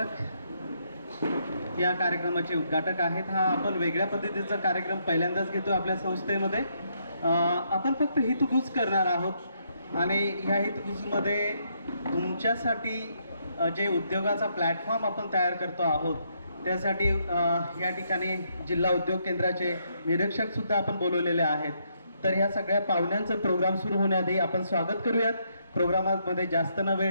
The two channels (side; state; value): both; inverted; correlation -0.75